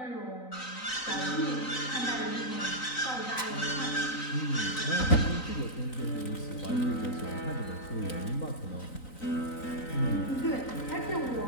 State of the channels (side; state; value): right; late; 3.9 ms